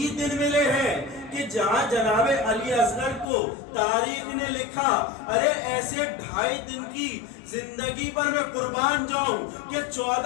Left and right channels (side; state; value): right; drops out; at 3.2 s